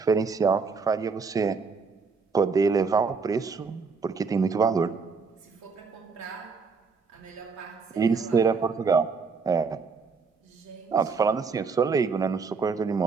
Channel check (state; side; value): quieter; left; 5.0 dB